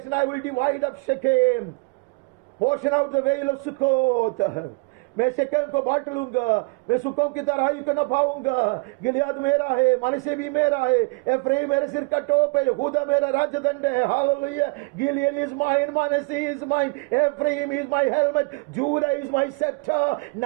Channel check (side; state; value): left; quieter; 29.3 dB